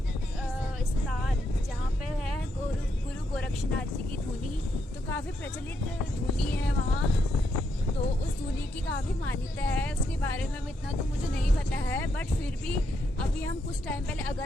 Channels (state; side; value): normal; both; correlation 0.79